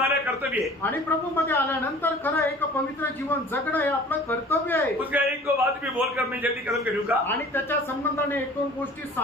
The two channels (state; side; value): normal; both; correlation 0.46